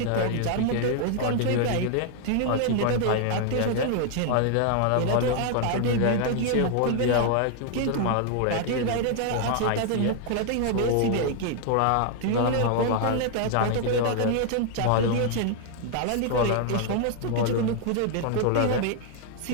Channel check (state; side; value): different; both; correlation 0.00